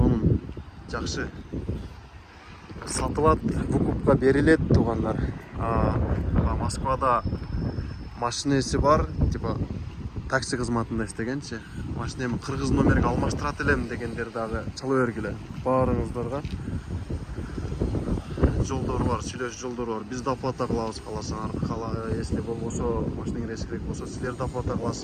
жакшы. Сатылат, выкупка берилет туугандар. Москвада машинеси бар, типа такси кызматында иштегенчи. Машинемди кыргыз номерге алмаштырат элем дегендер дагы чала бергиле. Баарыңыздарга жолдор бар, сүйлөшүү жолдору бар. Биз да оплата кылабыз каласаңар. Если болбосо, машинеңер эскирек болсо, силер да оплата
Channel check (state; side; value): identical; both; correlation 1.00